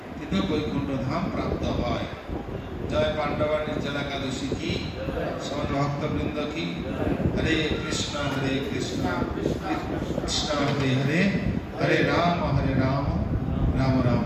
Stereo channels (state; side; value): identical; both; correlation 1.00